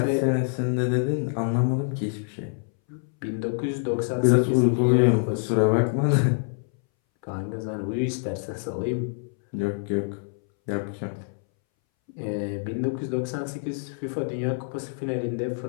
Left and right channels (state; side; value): silent; right; 61 dB below the other